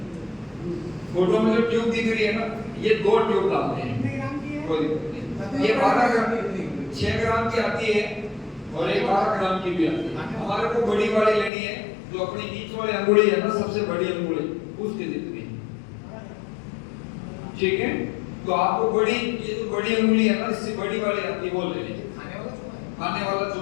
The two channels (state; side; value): drops out; right; at 11.5 s